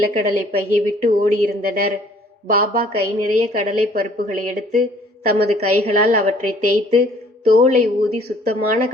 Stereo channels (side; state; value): both; normal; correlation 0.57